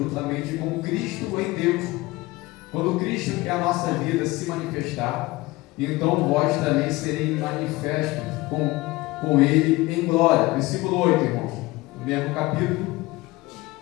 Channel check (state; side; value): quieter; right; 20.6 dB